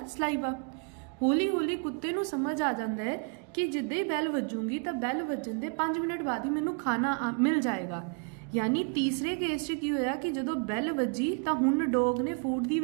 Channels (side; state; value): left; quieter; 38.0 dB